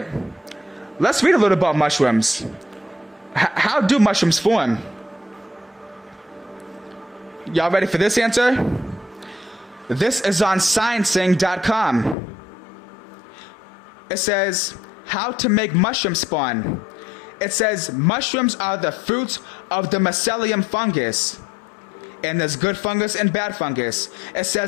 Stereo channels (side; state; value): right; drops out; at 12.2 s